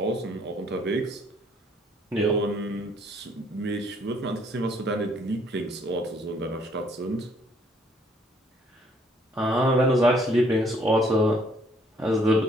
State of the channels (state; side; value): normal; both; correlation 0.64